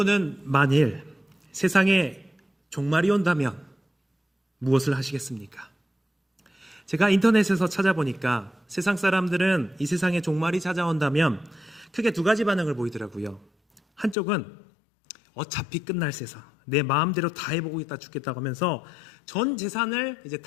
만일 세상에 종말이 온다면 무엇을 하시겠습니까? 제가 인터넷에서 찾아보니까 세상 사람들은 이 세상에 종말이 찾아온다면 크게 두 가지 반응을 보이더라고요. 한쪽은 어차피 끝날 세상, 내 마음대로 다 해보고 있다 죽겠다고 하면서 전 재산을 이제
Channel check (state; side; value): drops out; right; at 14.2 s